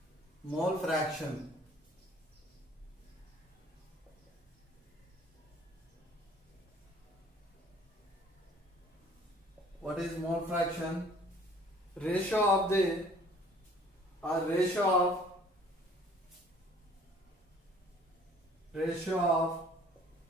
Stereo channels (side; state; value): both; normal; correlation 0.55